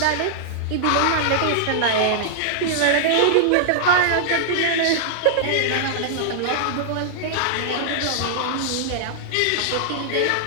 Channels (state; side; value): different; both; correlation -0.01